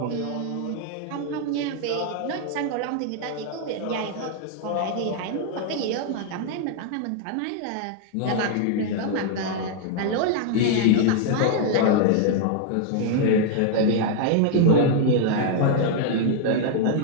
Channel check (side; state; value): both; different; correlation 0.00